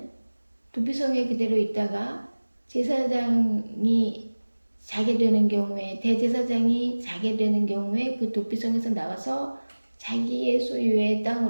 도피성에 그대로 있다가 제사장이 자게 되는 경우에 대제사장이 자게 되는 경우에 그 도피성에서 나와서 자기의 소유의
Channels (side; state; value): both; inverted; correlation -1.00